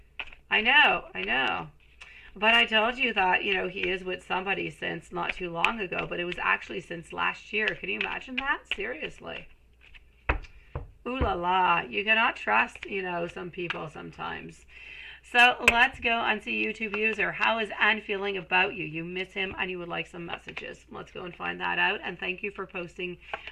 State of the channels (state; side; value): identical; both; correlation 1.00